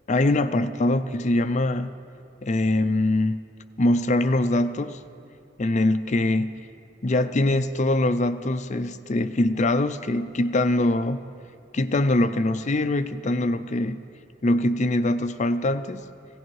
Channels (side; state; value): both; normal; correlation 0.69